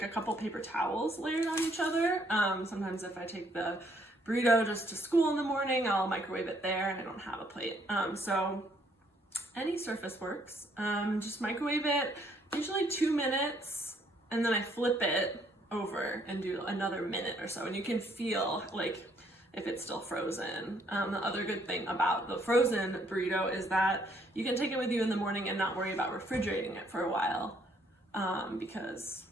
a couple paper towels layered on each other. Sometimes if I take the burrito just to school in the morning, I'll microwave it there and I don't have a plate. So any surface works. Just microwave it, usually 2 minutes, and then I flip it over and do another minute or so, and you can feel like if it's still frozen. The other good thing about the frozen burrito is that you can take it with you in the morning and not worry about refrigerating it for a while, because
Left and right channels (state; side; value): normal; both; correlation 0.67